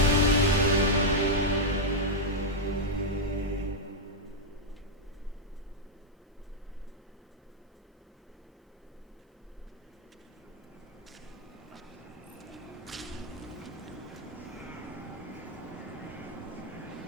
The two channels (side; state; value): both; normal; correlation -0.03